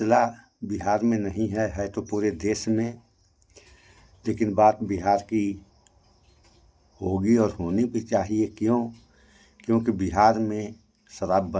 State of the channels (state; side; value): identical; both; correlation 1.00